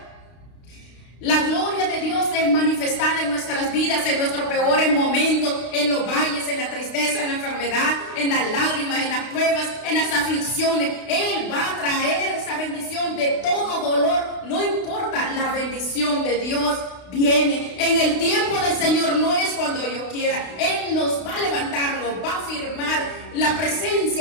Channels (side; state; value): right; late; 32 ms